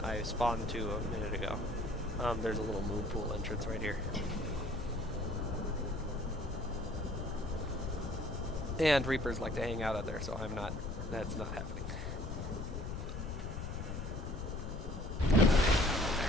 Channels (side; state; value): left; noise; rumble, 5 dB below the sound